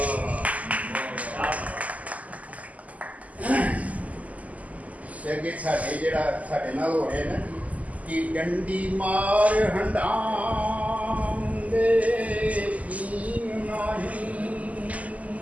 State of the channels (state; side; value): late; left; 0.073 ms